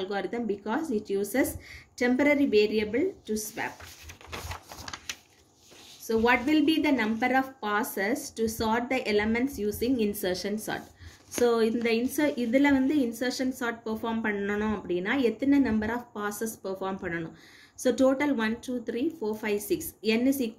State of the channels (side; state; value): both; identical; correlation 1.00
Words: because it uses temporary variable to swap. So what will be the number of passes to sort the elements using insertion sort? So இதில் வந்து insertion sort perform பண்ணணும் அப்படின்னா எத்தனை number of passes perform பண்ணணும்? So total 1, 2, 3, 4, 5, 6. n is